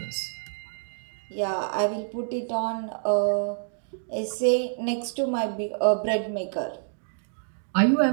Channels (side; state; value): left; silent; digital silence